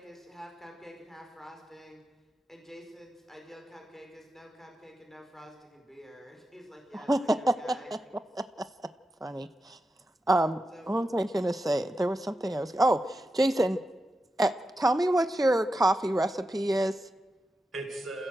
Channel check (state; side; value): normal; both; correlation 0.89